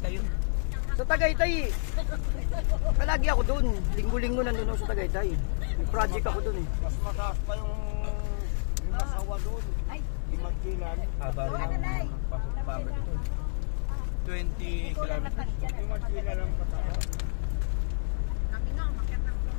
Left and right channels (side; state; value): right; silent; digital silence